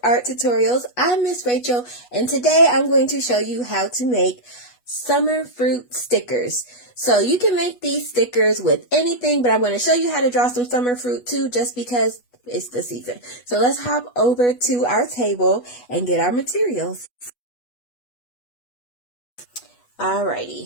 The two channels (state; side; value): late; right; 8.2 ms